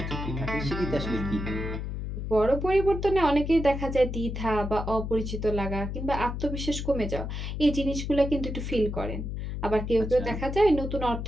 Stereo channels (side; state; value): left; noise; hum, 5 dB below the sound